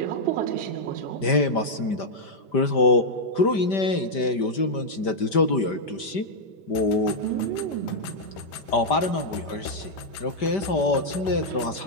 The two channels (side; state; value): right; late; 5.1 ms